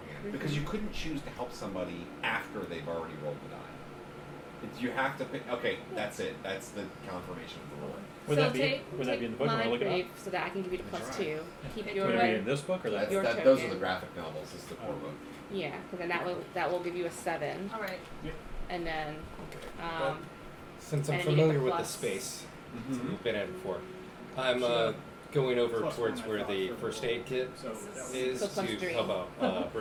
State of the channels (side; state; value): both; identical; correlation 1.00